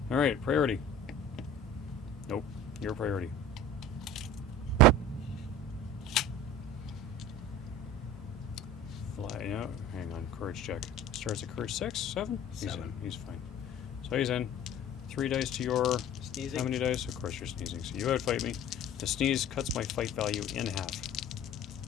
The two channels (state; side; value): normal; both; correlation 0.41